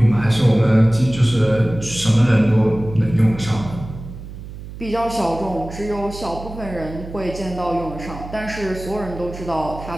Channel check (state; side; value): noise; right; hum, 12 dB below the sound